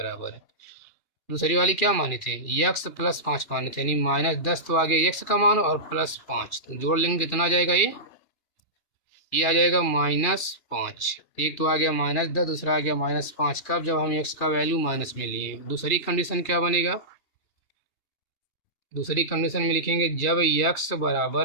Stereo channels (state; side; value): late; right; 2.3 ms